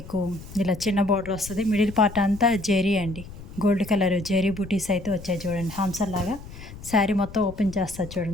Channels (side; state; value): left; noise; rumble, 15 dB below the sound